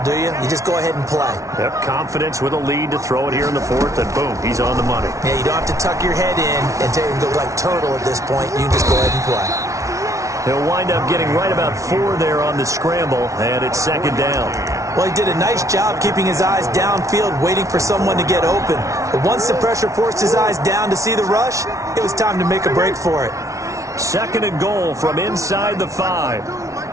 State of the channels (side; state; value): left; late; 0.15 ms